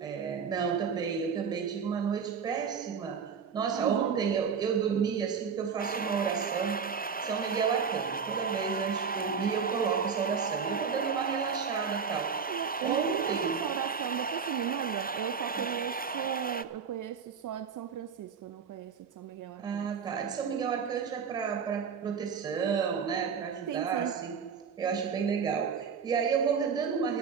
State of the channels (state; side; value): quieter; left; 6.3 dB